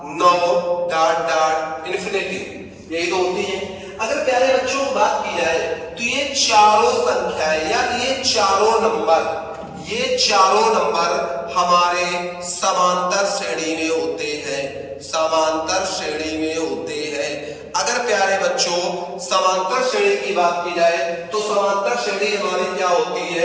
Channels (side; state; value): both; identical; correlation 1.00